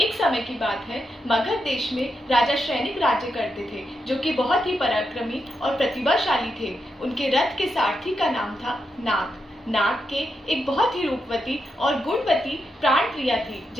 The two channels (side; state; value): both; normal; correlation 0.85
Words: समय की बात है, मगध देश में राजा श्रेनिक राज्य करते थे, जो कि बहुत ही पराक्रमी और प्रतिभाशाली थे। उनके रथ के सारथी का नाम था नाग। नाग के एक बहुत ही रूपवती और गुणवती प्राण प्रिया थी,